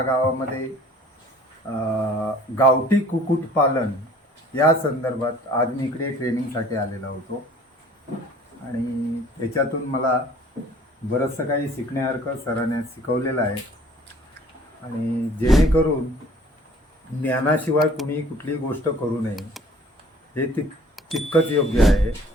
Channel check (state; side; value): normal; both; correlation 0.52